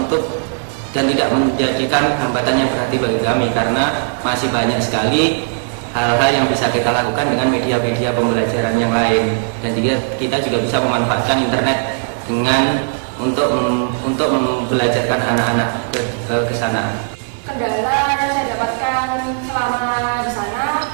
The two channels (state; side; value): silent; left; digital silence